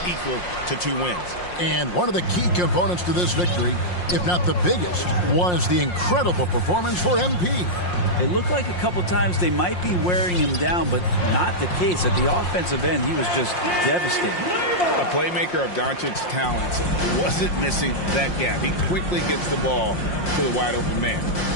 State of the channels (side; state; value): right; late; 5.6 ms